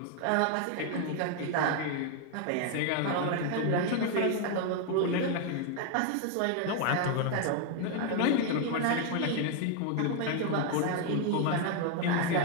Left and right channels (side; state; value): both; different; correlation 0.01